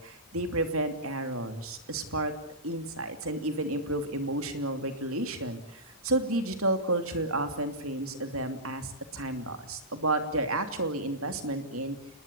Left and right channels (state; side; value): normal; both; correlation -0.17